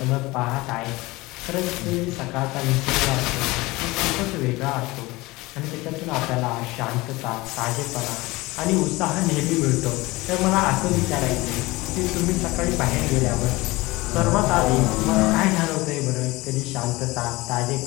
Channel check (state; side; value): quieter; right; 21.4 dB